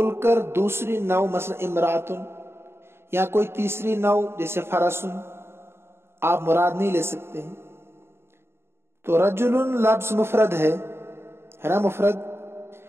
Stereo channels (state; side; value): late; left; 0.12 ms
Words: کر دوسری نوع مثلا امراتن یا کوئی تیسری نوع جیسے فرسن آپ مراد نہیں لے سکتے ہیں. تو رجل لفظ مفرد ہے نا، مفرد،